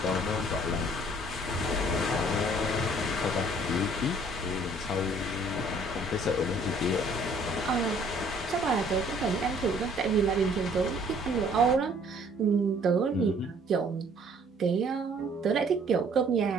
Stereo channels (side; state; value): both; normal; correlation 0.58